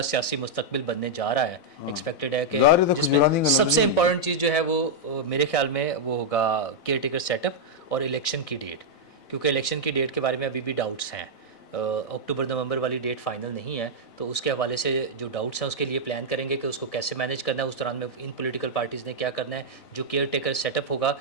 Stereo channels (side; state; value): right; late; 4.0 ms